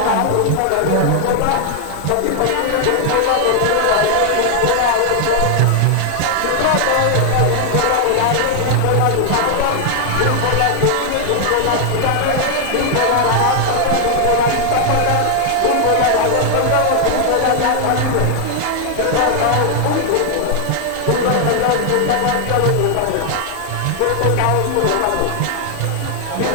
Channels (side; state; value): both; different; correlation 0.00